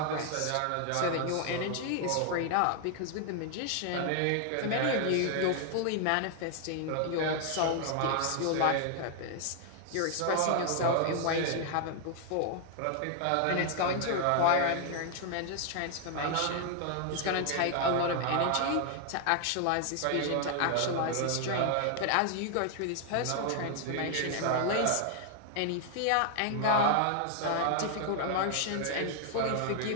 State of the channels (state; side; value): different; both; correlation 0.00